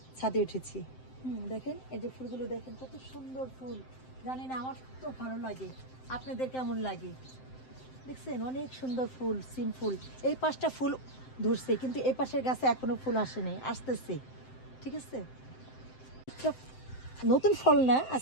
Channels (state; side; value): late; right; 7.7 ms